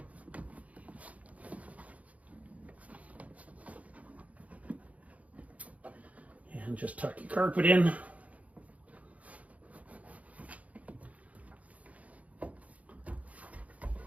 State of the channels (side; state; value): left; late; 0.069 ms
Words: And just tuck your carpet in.